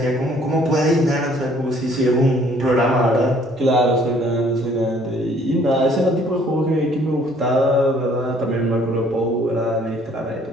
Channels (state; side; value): normal; both; correlation 0.60